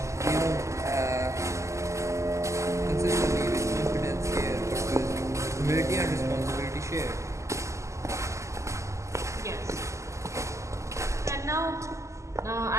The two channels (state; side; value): late; left; 0.14 ms